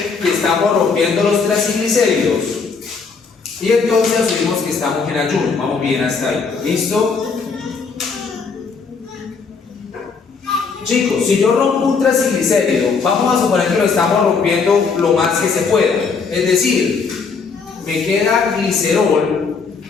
que estamos rompiendo los triacilglicéridos y entonces asumimos que estamos en ayuno. Vamos bien hasta ahí. ¿Listo? Chicos, si yo rompo un traciglicérido, vamos a suponer que lo estamos rompiendo lo más que se pueda. Es decir, me queda glicerol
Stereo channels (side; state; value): right; quieter; 5.1 dB